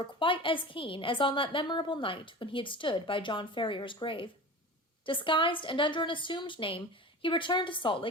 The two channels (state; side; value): normal; both; correlation 0.34